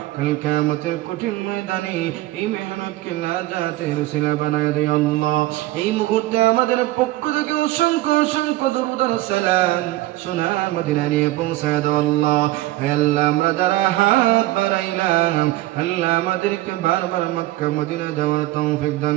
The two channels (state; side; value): quieter; left; 17.2 dB